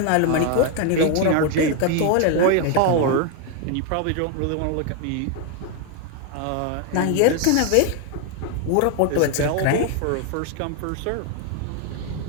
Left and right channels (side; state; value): both; different; correlation 0.01